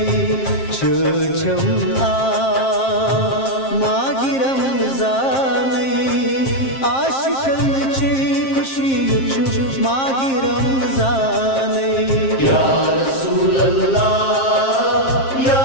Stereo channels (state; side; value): late; right; 7.5 ms